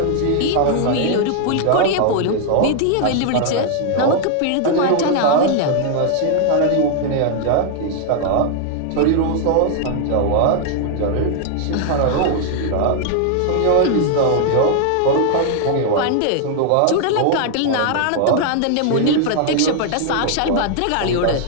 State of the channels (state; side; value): different; both; correlation 0.00